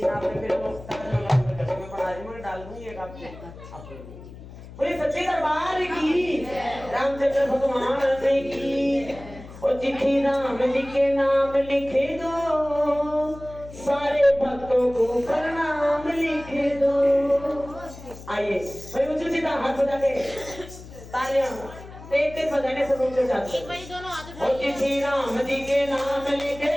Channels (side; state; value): left; noise; hum, 16 dB below the sound